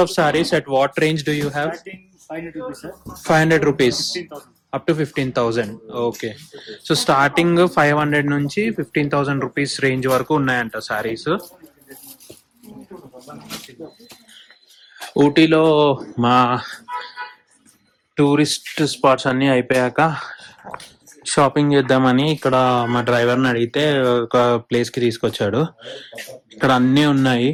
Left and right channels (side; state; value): both; identical; correlation 1.00